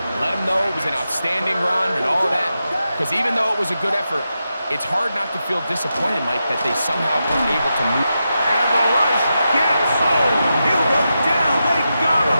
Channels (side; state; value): both; inverted; correlation -0.88